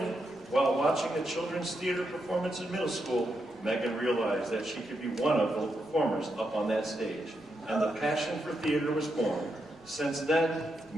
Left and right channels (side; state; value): both; normal; correlation 0.83